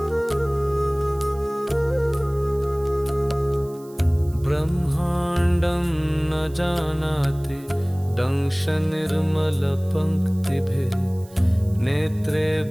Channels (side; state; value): right; noise; hiss, 25 dB below the sound